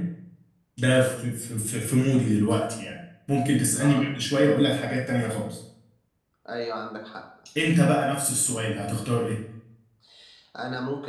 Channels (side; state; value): both; identical; correlation 1.00